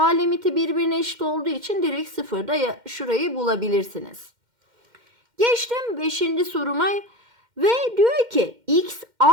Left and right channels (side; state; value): left; late; 2.1 ms